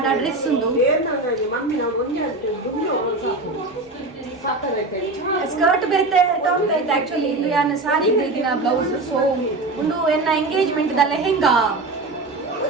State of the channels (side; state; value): left; quieter; 3.1 dB